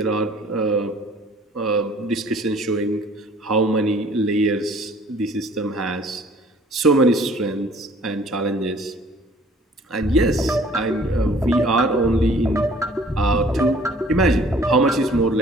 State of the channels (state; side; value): normal; both; correlation 0.54